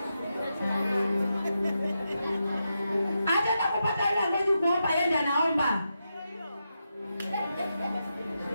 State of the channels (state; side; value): inverted; both; correlation -0.87